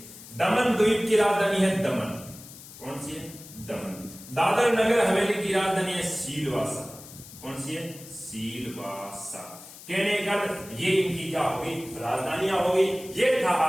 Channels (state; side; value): noise; left; hiss, 17 dB below the sound